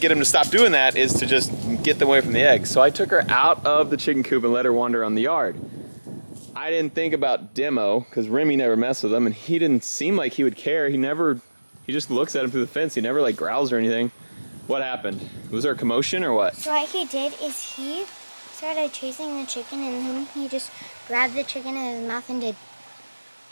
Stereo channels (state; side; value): inverted; both; correlation -1.00